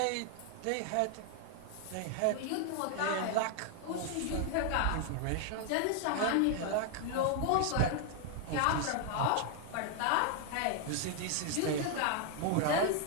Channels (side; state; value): both; different; correlation 0.00